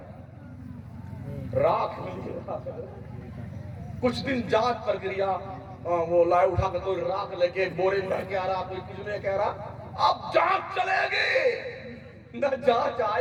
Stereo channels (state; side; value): identical; both; correlation 1.00